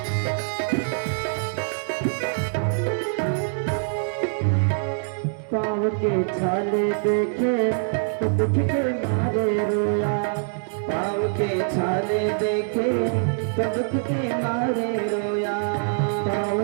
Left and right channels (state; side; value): silent; left; 62 dB below the other